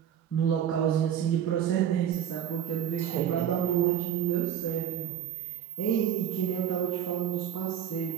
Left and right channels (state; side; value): quieter; left; 10.0 dB